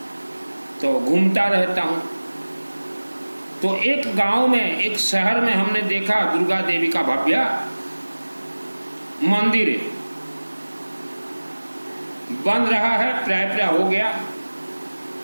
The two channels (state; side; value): inverted; both; correlation -1.00